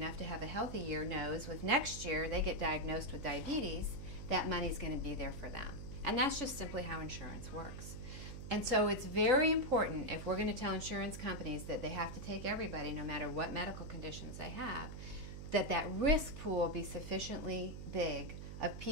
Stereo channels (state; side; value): noise; right; hum, 9 dB below the sound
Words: to have a healthy year knows with next year they get diagnosed with diabetes, that money's going to be there for them. And that's just simply how insurance works. And so it's very important, if we're going to tell insurance companies that they have to take everybody, no matter what medical conditions they have, that risk pool be sufficiently big of